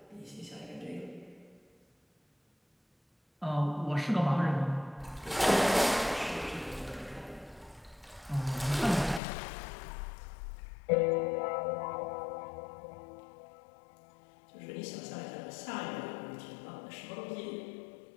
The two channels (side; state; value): right; drops out; at 9.2 s